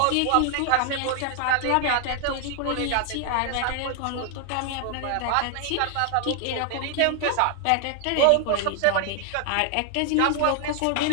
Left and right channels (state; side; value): different; both; correlation 0.00